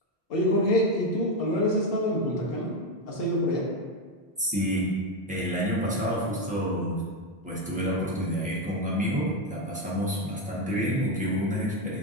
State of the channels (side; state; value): both; normal; correlation 0.09